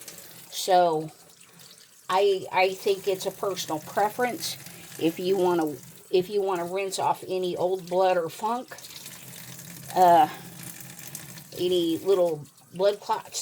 So I think it's a personal preference. If you want to rinse off any old blood or funk, any little blood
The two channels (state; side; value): identical; both; correlation 1.00